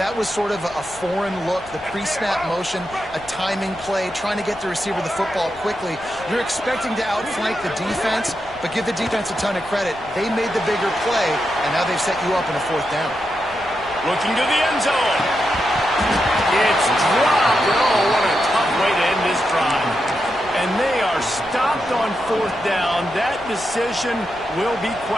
was sort of a foreign look, the pre-snap motion, a timing play, trying to get the receiver the football quickly. You're expecting to outflank the defense, but give the defense a ton of credit. They made the bigger play, and now they've set you up in a 4th down. Looking to the end zone. It's dropped. Oh, what a tough way to end this drive. And they are stopped on 4th down. That decision will be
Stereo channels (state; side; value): noise; left; rumble, 22 dB below the sound